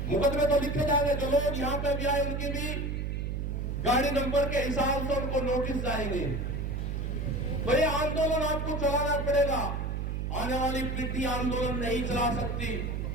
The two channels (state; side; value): noise; right; hum, 2 dB below the sound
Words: मुकदमे तो लिखे जाएंगे, जो लोग यहां पे भी आए उनकी भी गाड़ी नंबर के हिसाब से उनको नोटिस जाएंगे। तो ये आंदोलन आपको चलाना पड़ेगा। आने वाली पीढ़ी आंदोलन नहीं चला सकती।